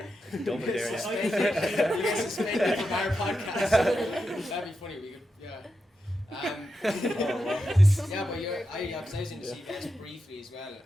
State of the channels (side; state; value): both; normal; correlation 0.88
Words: you. Don't dare you. You get suspended from our podcast. That'd be funny. We could, yeah. Yeah, but I was in the CBS briefly as well,